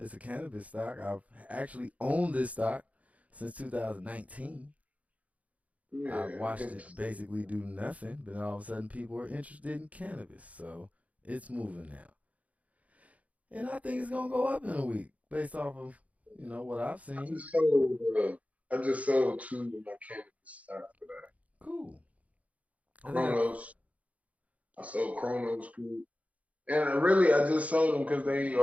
a cannabis stock. I've actually owned this stock since 2019. Yeah, I've watched it basically do nothing, but all of a sudden people are interested in cannabis. So it's moving now. And I think it's going to go up in a week based off of, what I've seen. I just sold 2 of my cannabis stock for that. Cool. Chronos. I sold Chronos Group. And I just sold them because they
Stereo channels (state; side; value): late; left; 0.068 ms